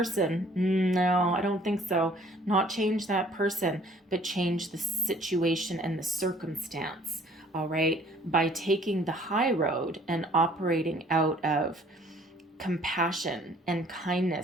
No, I don't think so. Not change that person, but change the situation and the circumstance, all right, by taking the high road and operating out of compassion and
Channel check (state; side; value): normal; both; correlation 0.56